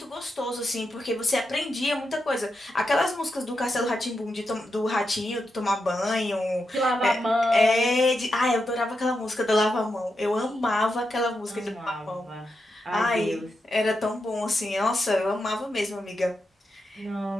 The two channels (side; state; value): both; normal; correlation 0.86